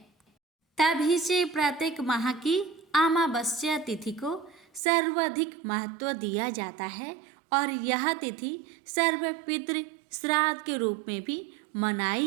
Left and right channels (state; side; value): drops out; left; at 4.8 s